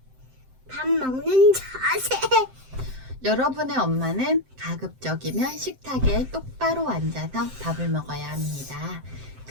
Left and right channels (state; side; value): late; left; 7.7 ms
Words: 밥 먹는 자세. 여러분의 엄마는 가급적이면 식탁에 똑바로 앉아서 밥을 먹어야 합니다.